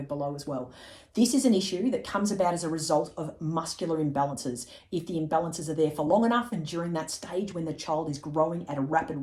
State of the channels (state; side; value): identical; both; correlation 1.00